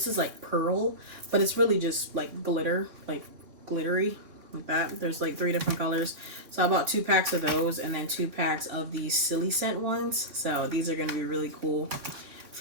is like pearl, but it's really just like glitter, like glittery. Like that. There's like 3 different colors. So I bought 2 packs of those and then 2 packs of these silly scent ones. So these are going to be really cool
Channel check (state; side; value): late; left; 3.5 ms